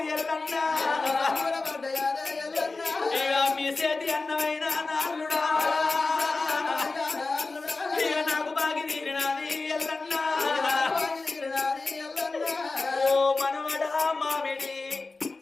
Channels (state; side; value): quieter; right; 3.7 dB